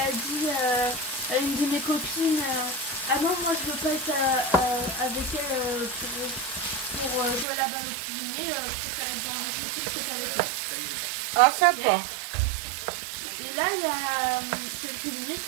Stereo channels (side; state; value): left; drops out; at 7.5 s